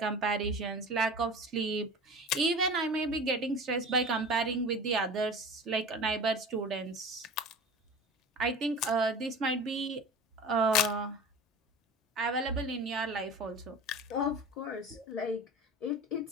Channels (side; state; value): both; normal; correlation 0.36